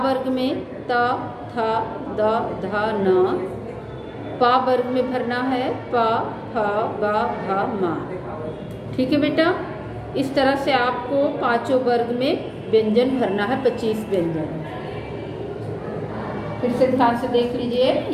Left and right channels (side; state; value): both; identical; correlation 1.00